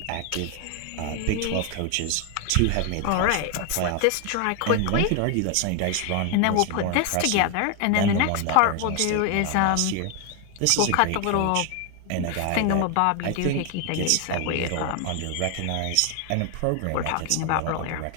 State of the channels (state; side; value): different; both; correlation 0.01